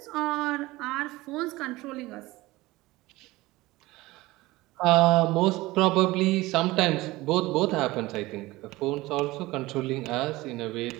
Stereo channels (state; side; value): quieter; left; 19.5 dB